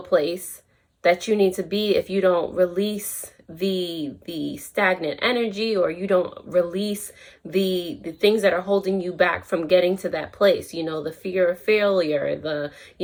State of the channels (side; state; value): both; identical; correlation 1.00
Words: place that you need to be if you don't release the stagnant energy, or you don't release the things that are holding you back from getting to that place. The fear of failure, the